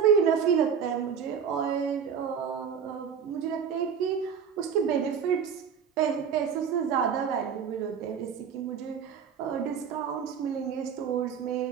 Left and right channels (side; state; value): left; quieter; 7.2 dB